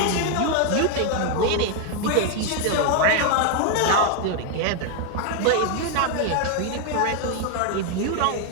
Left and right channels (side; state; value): both; different; correlation 0.01